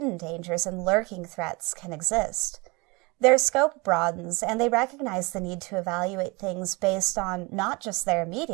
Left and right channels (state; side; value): quieter; left; 26.5 dB